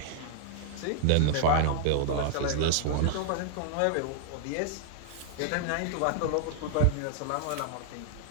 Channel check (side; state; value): both; different; correlation -0.01